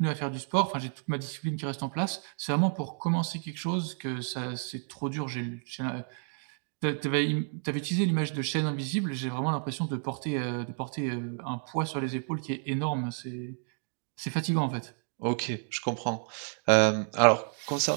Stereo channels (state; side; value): silent; left; 55 dB below the other